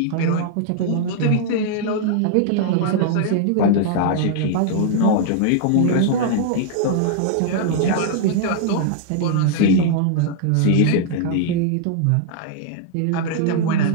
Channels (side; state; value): both; different; correlation -0.01